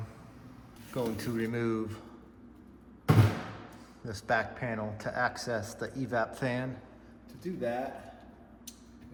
Going to remove this back panel to access the evap fan. To do that,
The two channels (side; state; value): both; identical; correlation 1.00